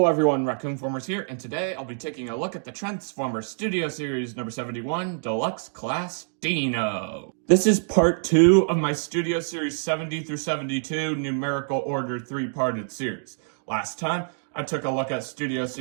everyone, Raccoon-Formers here, and today I'll be taking a look at the Transformers Studio Series number 71, Deluxe Class Dino. This is part 2 of my Studio Series 70 through 72 numerical order 3-parted series. Last time, I took a look at Studio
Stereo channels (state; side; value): silent; left; digital silence